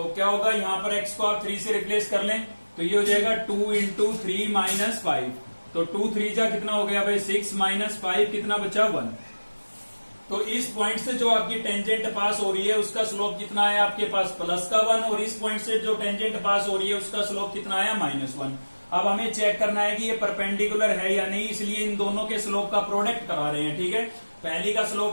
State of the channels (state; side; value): inverted; both; correlation -1.00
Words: क्या होगा, यहां पर x को आप 3 से रिप्लेस कर लें, तो ये हो जाएगा 2 इंटू 3 माइनस 5। तो 2 3 जा कितना हो गया भाई 6, माइनस 5 कितना बचा, 1। तो इस पॉइंट से जो आपकी टेंजेंट पास हो रही है उसका स्लोप कितना है आपके पास, प्लस का 1, और इस पॉइंट से जो टेंजेंट पास हो रही है उसका स्लोप कितना है, -1। अब हमें चेक करना है कि ये परपेंडिकुलर है या नहीं, इसलिए इन दोनों के स्लोप का प्रोडक्ट करा रहे हैं, ठीक है। पहली का